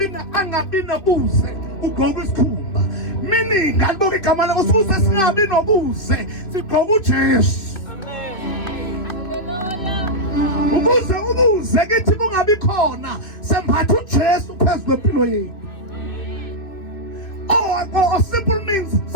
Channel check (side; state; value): right; late; 2.6 ms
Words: nobuze ugqoka isikhumba. Meaning ngaliboka igama lakho ukuze singabi nobuze sigqoka uJesu. Ukuze ubuze kithi kungabi khona sembatha uJesu phezulu kwempilo yethu. Or simple means